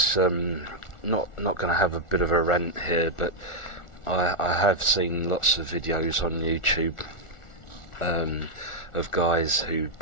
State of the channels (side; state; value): right; late; 1.4 ms